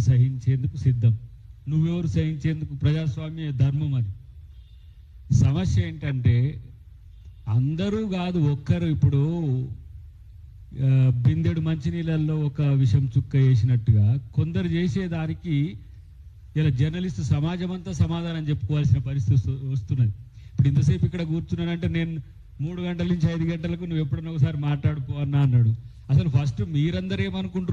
సహించేందుకు సిద్ధం. నువ్వెవరు సహించేందుకు? ప్రజాస్వామ్య ధర్మం అది. సమస్య ఏంటంటే అందరూ కాదు, ఒక్కరు. ఇప్పుడు బిందెడు మంచినీళ్ళల్లో ఒక విషం చుక్క వేసినట్టుగా కొందరు చేసేదానికి ఇలా జర్నలిస్ట్ సమాజం అంతా సమాధానం చెప్పుకోవాల్సిన పరిస్థితి వస్తున్నది. ఇప్పుడు ఇంతసేపు ఇక్కడ కూర్చున్నానంటే నేను 3 గంటల నుంచి 5 గంటలకు నువ్వు ఎప్పుడన్నా ఒకసారి మాట్లాడుకో అన్నాడు. అసలు ఫస్ట్ మీరందరూ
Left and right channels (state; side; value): identical; both; correlation 1.00